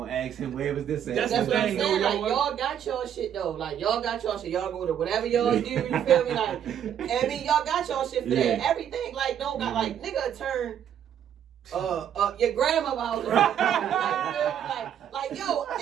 ask him, where was this at? That's what I'm saying, like, y'all got y'all shit, though. Like, y'all got y'all shit. Y'all go to whatever y'all do, you feel me? Like, I mean, y'all got y'all shit for that. Everything, like, don't got, like, nigga turn... your grandma house. Like, yo,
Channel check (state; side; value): quieter; left; 9.4 dB